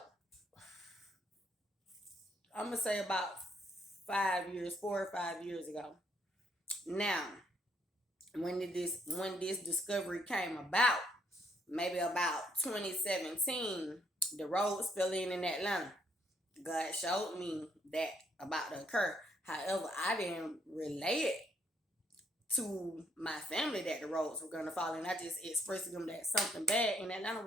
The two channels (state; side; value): normal; both; correlation 0.70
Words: I'm going to say about 4 or 5 years ago. Now, when this discovery came about, maybe about 2017, the roads fell in Atlanta. God showed me that about to occur. However, I didn't relay it to my family that the roads were going to fall in. I just expressed to them that something bad in Atlanta